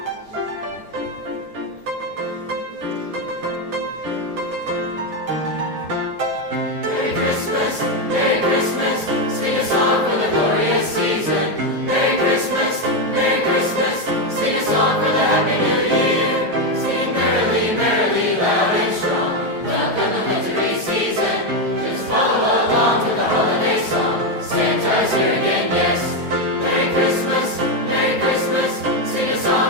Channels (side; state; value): left; late; 9.3 ms